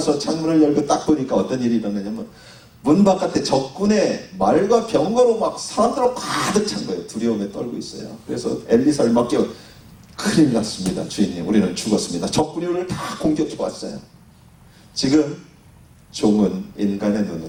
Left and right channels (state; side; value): identical; both; correlation 1.00